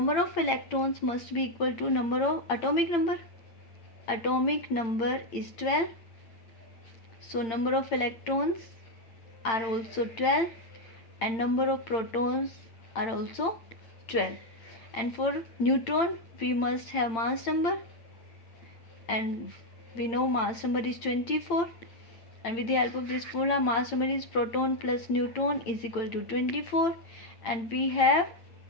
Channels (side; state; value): right; late; 8.9 ms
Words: of electrons must be equal to number of atomic number. Atomic number is 12. So number of electrons are also 12 and number of protons are also 12. And for neutron we must have mass number, and we know mass number is 24. And with the help of this formula, mass number is proton plus neutron is equal to 24, and we have